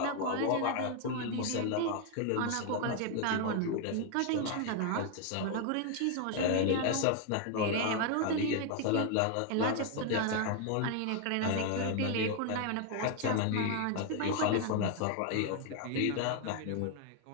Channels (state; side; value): different; both; correlation 0.01